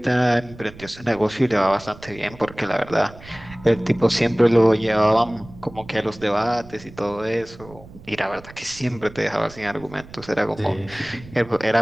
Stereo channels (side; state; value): right; noise; rumble, 19 dB below the sound